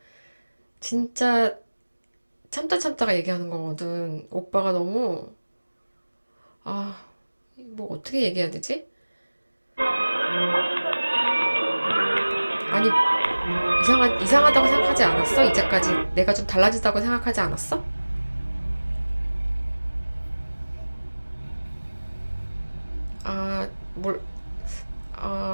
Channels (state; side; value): inverted; both; correlation -1.00